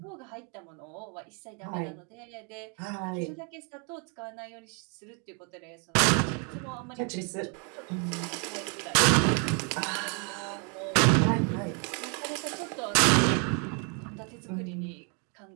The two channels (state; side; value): quieter; left; 36.9 dB